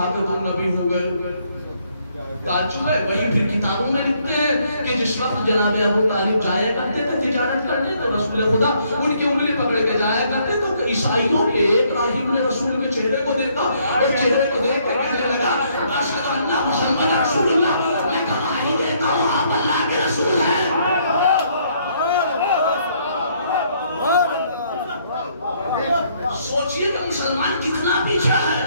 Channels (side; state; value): both; inverted; correlation -0.68